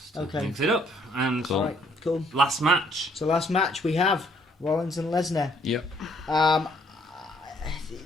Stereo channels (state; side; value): normal; both; correlation 0.66